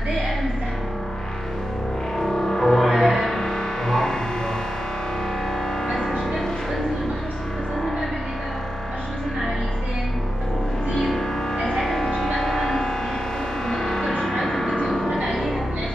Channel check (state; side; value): noise; right; hum, 16 dB below the sound